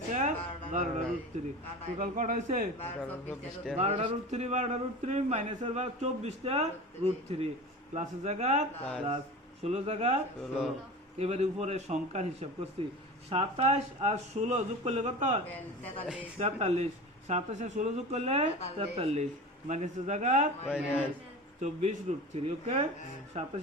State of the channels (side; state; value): both; normal; correlation 0.33